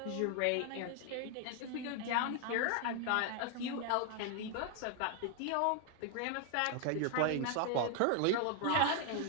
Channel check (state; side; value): different; both; correlation 0.00